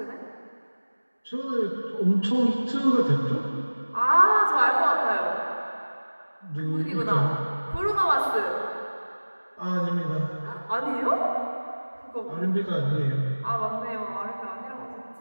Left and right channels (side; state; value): both; inverted; correlation -1.00